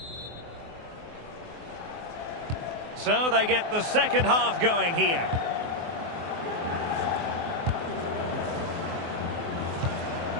So they get the second half going here.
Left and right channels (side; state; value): left; late; 24 ms